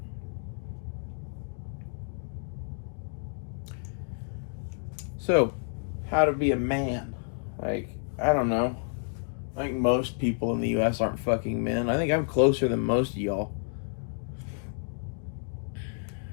So, how to be a man? Like, I don't know. I think most people in the U.S. aren't fucking men. I think I'm closer than most of y'all.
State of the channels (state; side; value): silent; right; 58 dB below the other